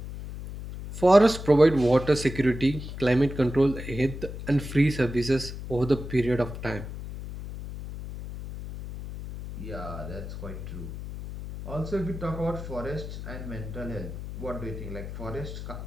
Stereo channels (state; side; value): noise; left; hum, 9 dB below the sound